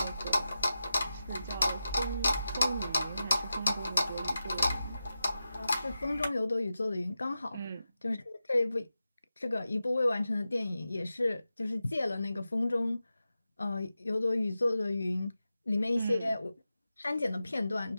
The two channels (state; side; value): inverted; both; correlation -0.92